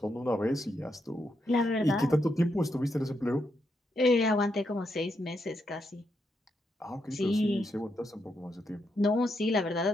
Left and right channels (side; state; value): both; normal; correlation 0.81